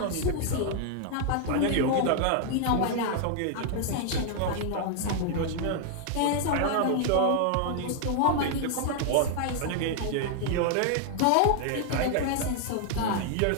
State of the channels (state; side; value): different; both; correlation 0.00